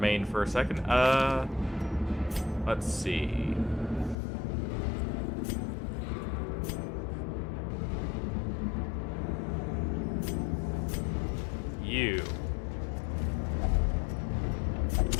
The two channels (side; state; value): right; drops out; at 4.2 s